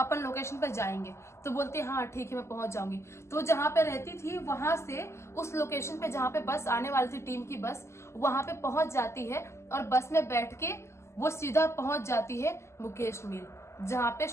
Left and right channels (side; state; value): right; late; 0.13 ms